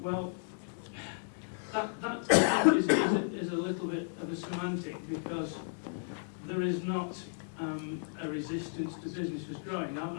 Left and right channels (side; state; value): right; silent; digital silence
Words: Well, that is a little bit of a semantic, because there is not a resistance to businesses growing.